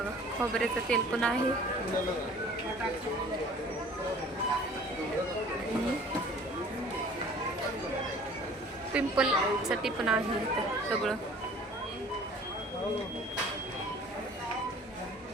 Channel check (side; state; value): both; normal; correlation 0.49